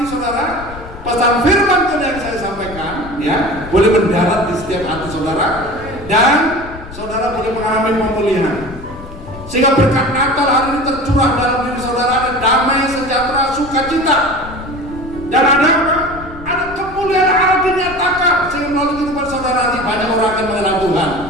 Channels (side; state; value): left; noise; rumble, 14 dB below the sound